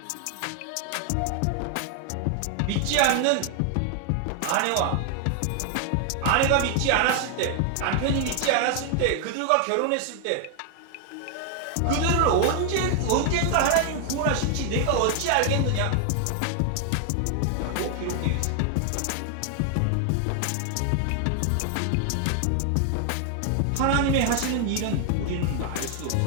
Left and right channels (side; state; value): both; different; correlation 0.00